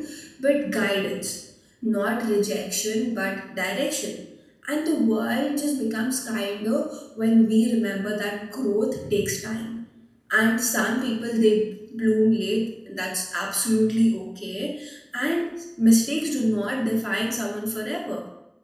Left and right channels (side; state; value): both; identical; correlation 1.00